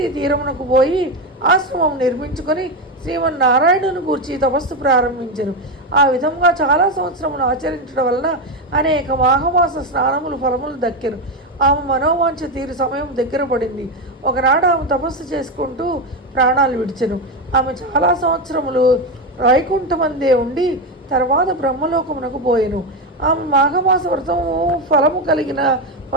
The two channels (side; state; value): both; normal; correlation 0.12